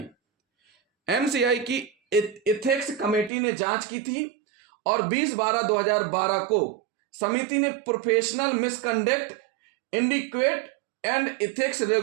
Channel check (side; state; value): left; drops out; at 3.3 s